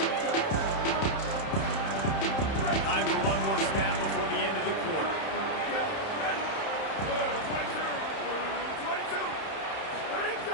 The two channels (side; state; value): right; late; 31 ms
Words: Time for one more snap before the end of the quarter. 22. Ready to